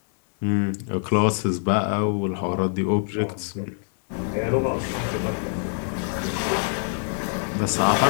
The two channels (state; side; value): silent; right; digital silence